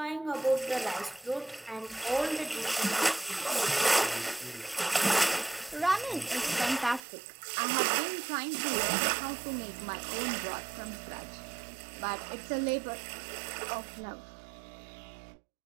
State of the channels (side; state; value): left; drops out; at 7.0 s